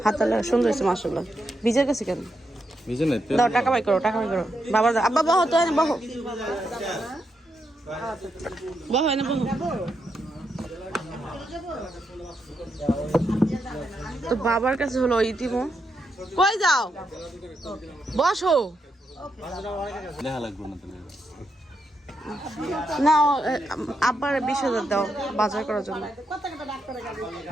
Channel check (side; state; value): both; normal; correlation 0.82